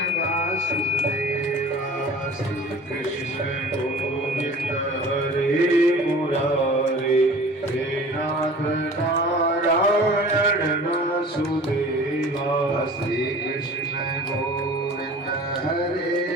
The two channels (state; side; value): normal; both; correlation 0.43